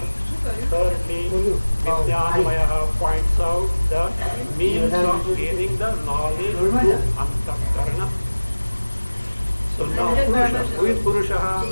Thirdly, Vijnanamaya points out the means of gaining the knowledge through Antakarana. So now Purusha, who is Purusha?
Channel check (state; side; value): inverted; both; correlation -1.00